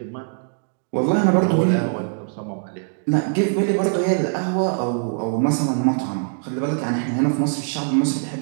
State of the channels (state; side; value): silent; left; 64 dB below the other